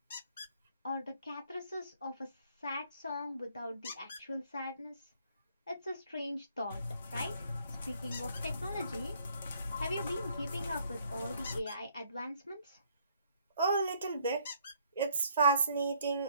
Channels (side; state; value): both; inverted; correlation -0.66